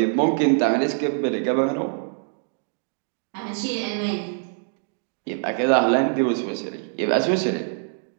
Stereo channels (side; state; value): left; silent; digital silence